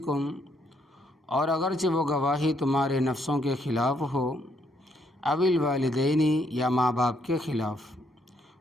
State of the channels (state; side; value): normal; both; correlation 0.72